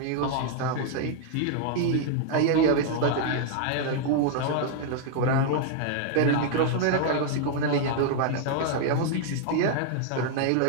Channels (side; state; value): both; different; correlation -0.01